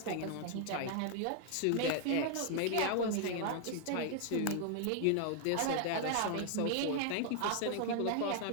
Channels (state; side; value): different; both; correlation 0.00